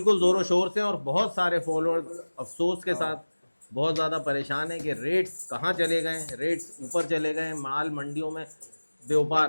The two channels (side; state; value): both; inverted; correlation -1.00